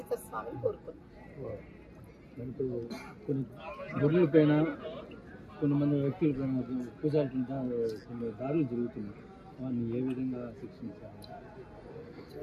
స్వామిని కోరుకున్నాం. కొంతమంది వ్యక్తుల పైన పూజాల కింద కొన్ని దాడులు జరుగుతున్నాయి, వారిని ఏ విధంగా శిక్షించాలి?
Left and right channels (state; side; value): identical; both; correlation 1.00